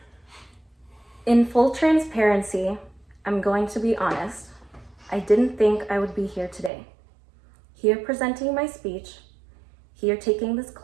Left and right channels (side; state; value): left; drops out; at 6.7 s